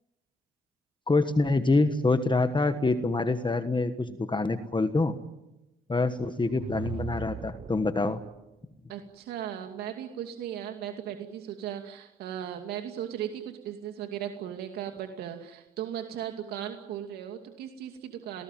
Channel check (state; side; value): normal; both; correlation 0.74